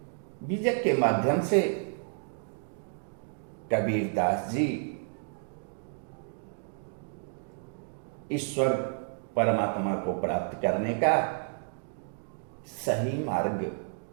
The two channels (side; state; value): left; silent; 57 dB below the other